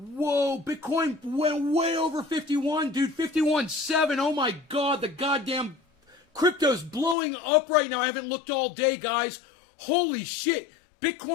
Bitcoin went way over 51, dude. 51.7. Oh my God, the goddamn crypto's blowing up right now. I haven't looked all day, guys. Holy shit.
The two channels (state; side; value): drops out; right; at 7.2 s